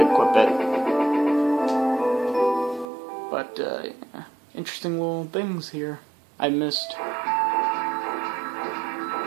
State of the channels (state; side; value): drops out; left; at 2.9 s